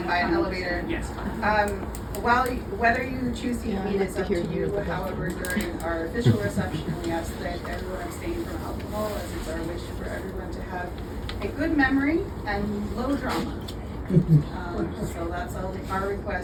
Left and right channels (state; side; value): identical; both; correlation 1.00